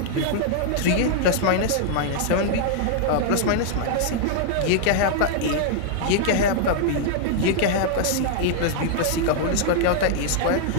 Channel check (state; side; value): different; both; correlation -0.01